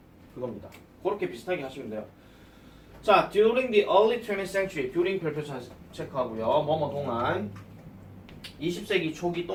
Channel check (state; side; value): identical; both; correlation 1.00